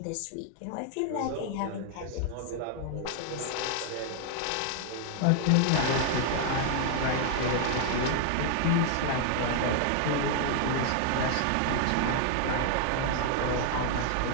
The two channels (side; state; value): both; different; correlation 0.00